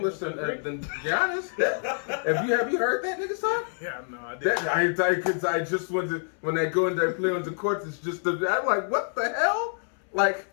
than Giannis. Have you heard that nigga talk? Yeah, no, I did. I just when they go and they play on the court, it's just I'm like, what the hell? Like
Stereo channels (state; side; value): silent; right; 60 dB below the other